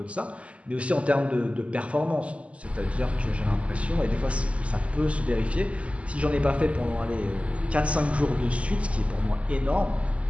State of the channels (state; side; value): late; left; 0.062 ms